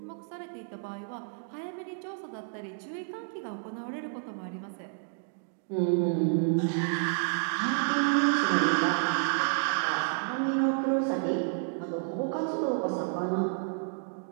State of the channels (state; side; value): silent; left; digital silence